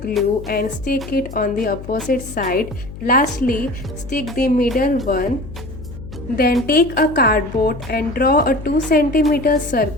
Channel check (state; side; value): noise; left; hum, 13 dB below the sound